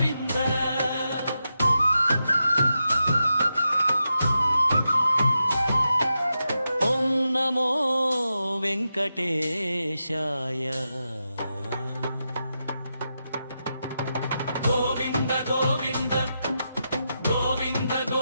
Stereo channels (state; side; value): inverted; both; correlation -0.88